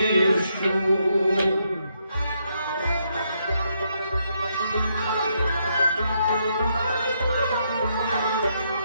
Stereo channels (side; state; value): both; inverted; correlation -0.77